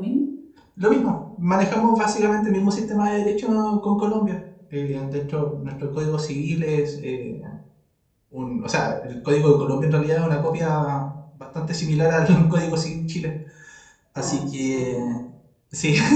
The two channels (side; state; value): both; identical; correlation 1.00